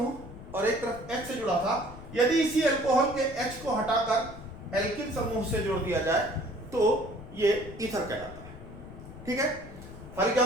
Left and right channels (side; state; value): left; noise; rumble, 14 dB below the sound